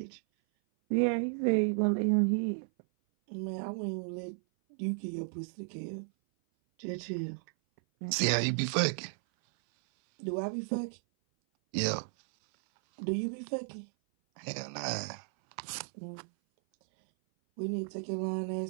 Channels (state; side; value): silent; left; 55 dB below the other